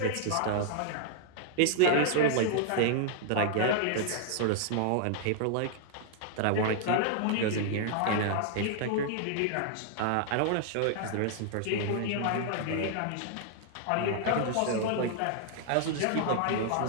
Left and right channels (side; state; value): both; different; correlation -0.01